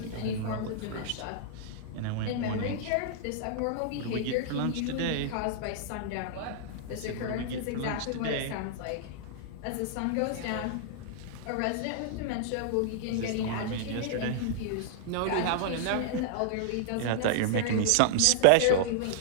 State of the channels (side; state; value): both; different; correlation -0.01